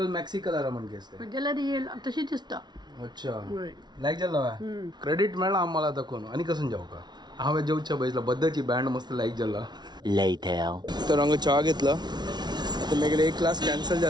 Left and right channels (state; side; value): late; left; 0.20 ms